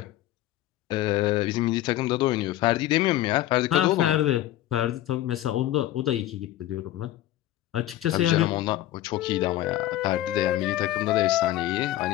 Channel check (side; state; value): right; quieter; 14.3 dB